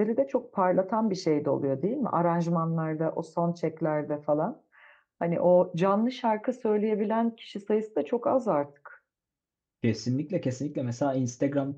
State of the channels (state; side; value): identical; both; correlation 1.00